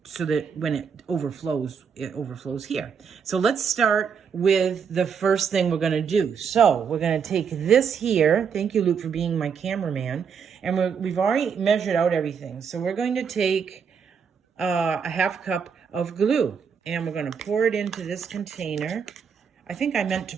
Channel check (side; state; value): left; quieter; 6.6 dB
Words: so that when it overflows here. So let's start with the first thing we're going to do. So we're going to take this here. Thank you, Luke, for being my cameraman. And we've already measured out everything. So we're going to take a half cup of glue, and we're going to pour it into this container. I think I meant to